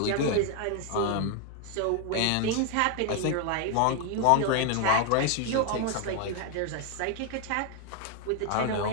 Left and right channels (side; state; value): both; different; correlation 0.01